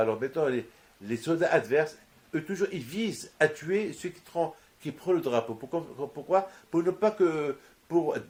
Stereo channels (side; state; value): both; identical; correlation 1.00